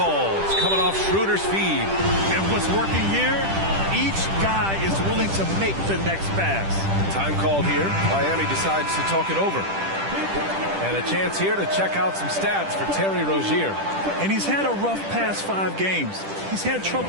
Coming off Schroeder's feed. And what's working here? Each guy is willing to make the next pass. Time called here. Miami decides to talk it over. And a chance here to check out some stats for Terry Rozier. And he's had a rough past 5 games. He's had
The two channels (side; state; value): left; late; 10 ms